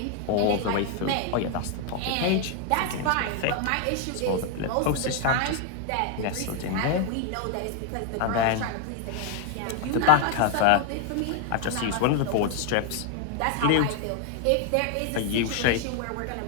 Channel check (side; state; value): both; different; correlation 0.00